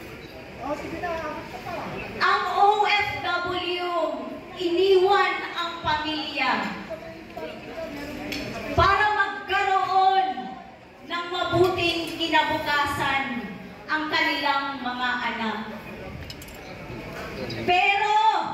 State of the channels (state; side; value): identical; both; correlation 1.00